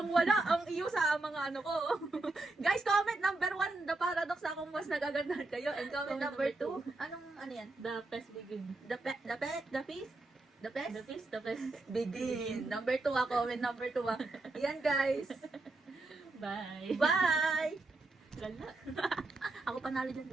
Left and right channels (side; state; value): left; quieter; 3.1 dB